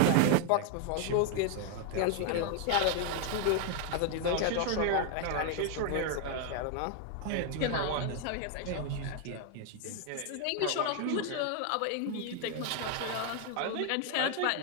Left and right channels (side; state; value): both; different; correlation 0.00